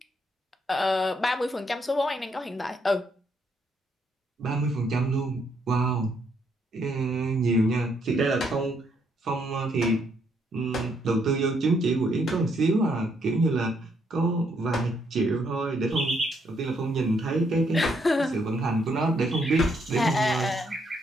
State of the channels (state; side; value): normal; both; correlation 0.73